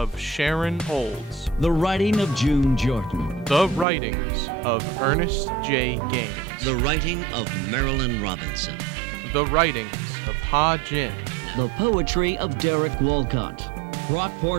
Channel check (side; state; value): left; drops out; at 3.9 s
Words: Sharon Olds. The writing of June Jordan. The writings of Ernest J. Gaines. The writing of Marilyn Robinson. The writings of Ha Jin. The poetry of Derek Walcott.